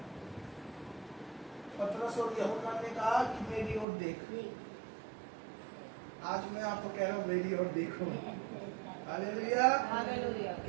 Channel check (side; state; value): left; drops out; at 3.9 s